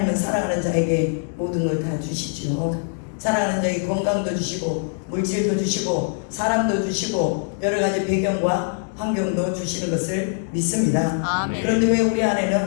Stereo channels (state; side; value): silent; right; 64 dB below the other